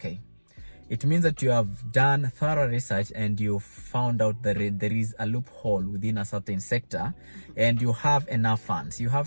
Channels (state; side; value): inverted; both; correlation -1.00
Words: It means that you have done thorough research and you found out that there is a loophole within a certain sector, and you have enough funds. You